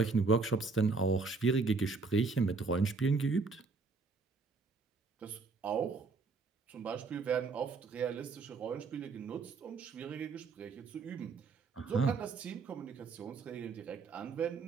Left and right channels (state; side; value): quieter; left; 4.4 dB